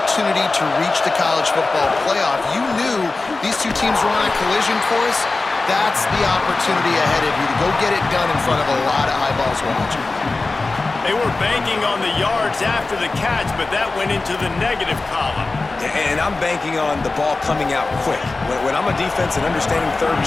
to reach the college football playoff. You knew these two teams were on a collision course. That's the opportunity ahead of you to go get it done in front of a lot of eyeballs watching. They were banking on the yards after the catch, but that went into the negative column. And I'm banking on the ball coming out quick. When I'm a defense and understanding third and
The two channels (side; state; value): right; quieter; 3.5 dB